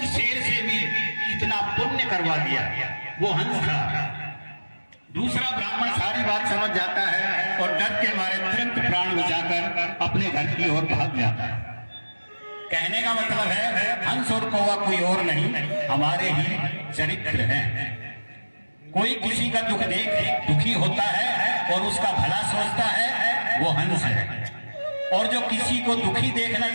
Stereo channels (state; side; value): inverted; both; correlation -1.00